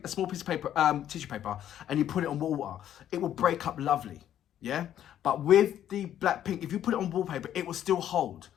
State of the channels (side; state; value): right; quieter; 10.9 dB